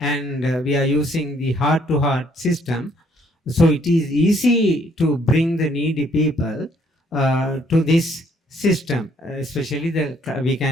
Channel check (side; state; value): both; normal; correlation 0.66